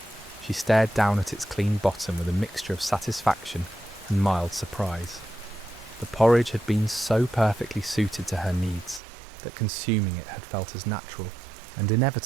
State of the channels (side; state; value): left; drops out; at 9.0 s